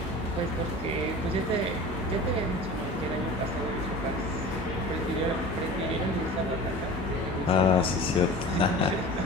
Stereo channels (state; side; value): normal; both; correlation 0.38